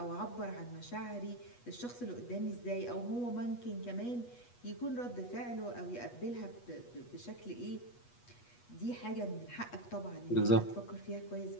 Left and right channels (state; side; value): late; right; 8.3 ms